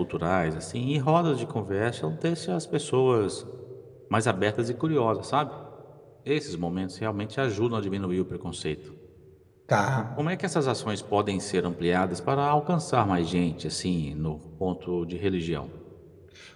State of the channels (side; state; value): both; identical; correlation 1.00